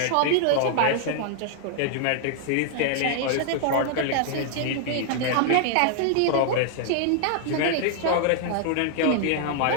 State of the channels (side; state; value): both; different; correlation -0.01